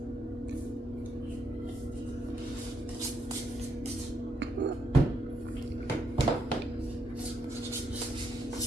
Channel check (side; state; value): both; normal; correlation 0.78